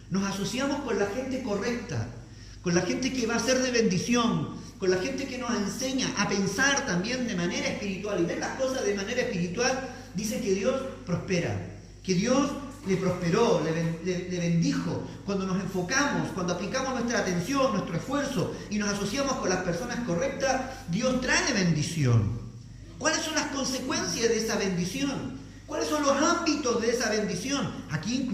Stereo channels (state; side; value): identical; both; correlation 1.00